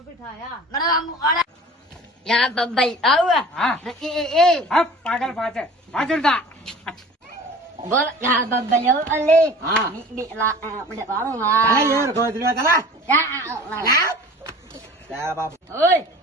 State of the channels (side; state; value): both; normal; correlation 0.43